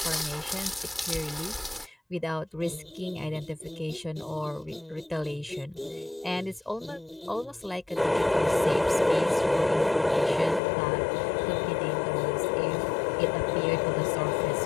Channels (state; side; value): drops out; right; at 10.6 s